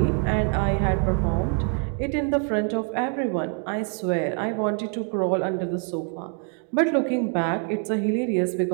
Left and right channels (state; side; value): quieter; left; 35.3 dB